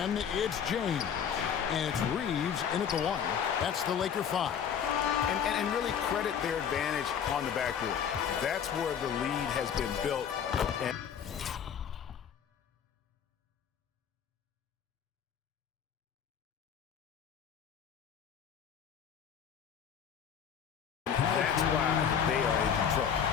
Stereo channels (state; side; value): quieter; right; 8.0 dB